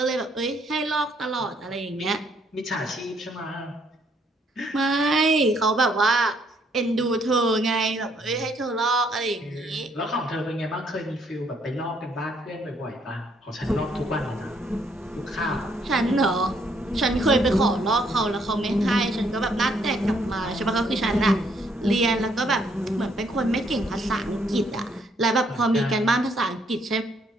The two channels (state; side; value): normal; both; correlation 0.69